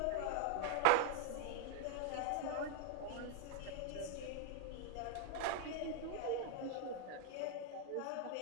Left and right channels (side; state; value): both; different; correlation 0.01